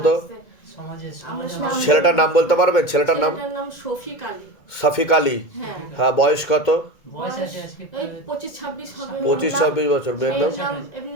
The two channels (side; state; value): right; late; 2.1 ms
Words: তো, ছেলেটার নাম বলতে পারবেন? ছেলেটার নাম শফিক আলী। শফিক আলী। হ্যাঁ, হ্যাঁ, বয়স কত? বয়স এই 25-26 হবে। 25-26 বছর। মেয়ের নাম? নাম